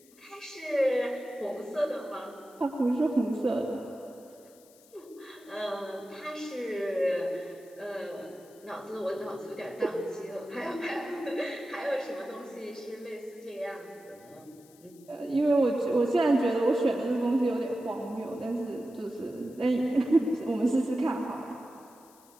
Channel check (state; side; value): noise; left; hiss, 26 dB below the sound